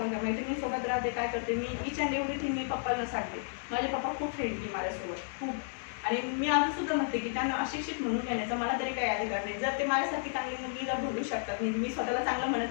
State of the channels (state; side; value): silent; right; digital silence